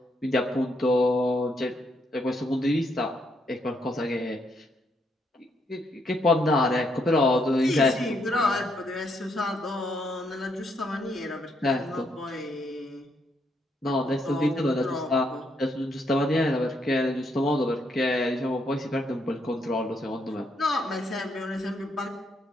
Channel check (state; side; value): normal; both; correlation 0.75